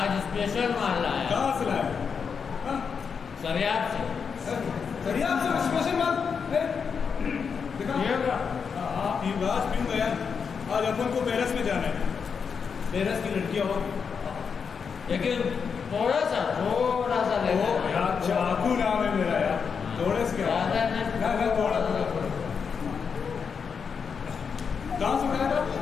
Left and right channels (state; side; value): quieter; right; 6.1 dB